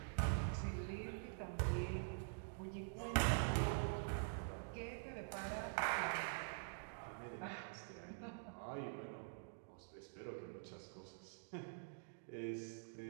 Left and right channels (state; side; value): silent; left; digital silence